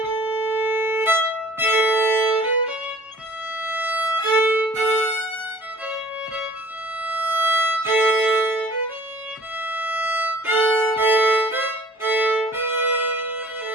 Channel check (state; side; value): normal; both; correlation 0.50